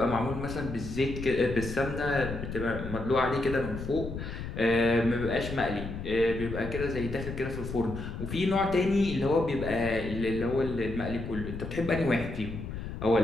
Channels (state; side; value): noise; left; rumble, 7 dB below the sound